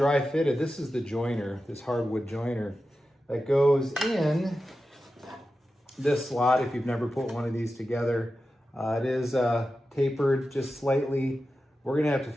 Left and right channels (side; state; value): both; normal; correlation 0.92